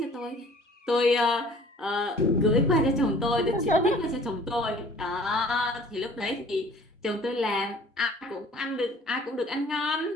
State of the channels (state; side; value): normal; both; correlation 0.51